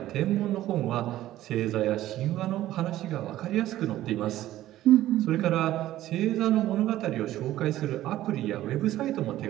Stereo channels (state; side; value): quieter; left; 14.3 dB